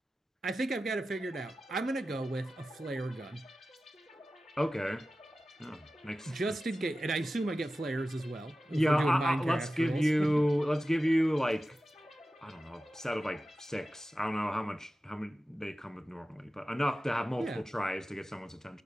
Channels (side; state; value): both; normal; correlation 0.94